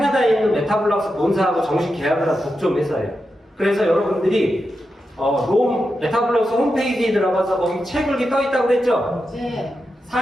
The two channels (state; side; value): normal; both; correlation 0.88